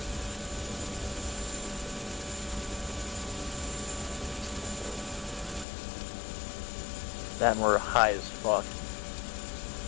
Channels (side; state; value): right; drops out; at 5.7 s